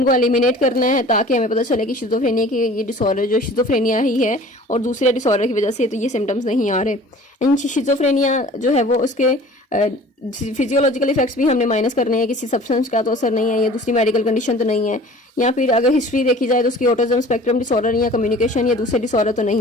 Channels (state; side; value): normal; both; correlation 0.46